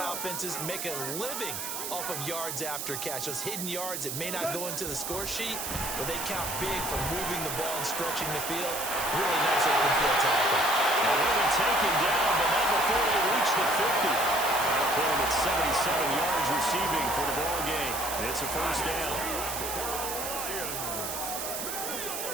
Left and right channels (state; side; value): noise; right; hiss, 4 dB below the sound